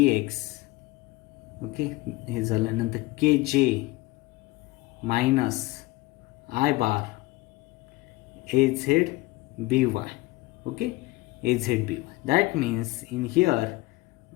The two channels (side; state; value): right; quieter; 20.3 dB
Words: Okay, हे झाल्यानंतर k j minus i bar a z b y. Okay, a z b y. That means in here